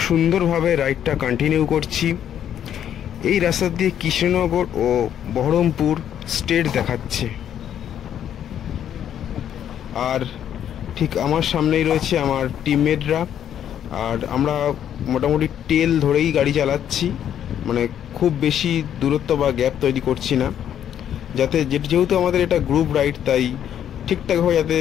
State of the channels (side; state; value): right; quieter; 9.9 dB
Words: সুন্দরভাবে রাইডটা কন্টিনিউ করছি। এই রাস্তা দিয়ে কৃষ্ণনগর ও বহরমপুর স্টেট দেখাচ্ছে। আর ঠিক আমার সামনেই রয়েছে আমার টিমমেটরা, আর আমরা মোটামুটি টেল ধরেই গাড়ি চালাচ্ছি, মানে খুব বেশি দূরত্ব বা গ্যাপ তৈরি করছি না, যাতে যেহেতু আমাদের এটা গ্রুপ রাইড, তাই ঠিকঠাকভাবে যাতে